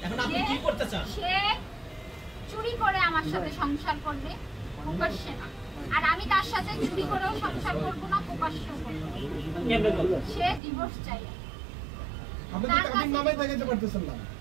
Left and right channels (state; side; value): drops out; left; at 10.6 s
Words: এখন আপনি কি করতে চান? সে চুরি করে আমার সাথে সংসার করবে, প্রকাশ্যে না। আর আমি তার সাথে চুরি করেও সংসার করব না, প্রকাশ্যেও করব না। সে ডিভোর্স চাই। আপনি তো কাবিন নামাই দেখাতে পারতেছেন না।